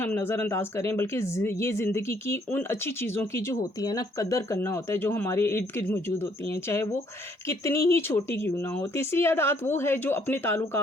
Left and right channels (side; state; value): both; normal; correlation 0.66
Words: नज़रअंदाज करें, बल्कि ये ज़िंदगी की उन अच्छी चीज़ों की जो होती है ना कदर करना होता है, जो हमारे इर्द गिर्द मौजूद होती हैं, चाहे वो कितनी ही छोटी क्यों ना हो। तीसरी आदत वो है जो अपने